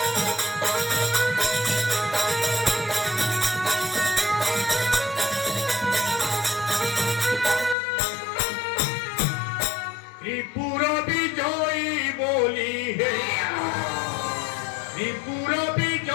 ত্রিপুর বিজয়ী বলি হে ত্রিপুর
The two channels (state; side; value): drops out; right; at 7.8 s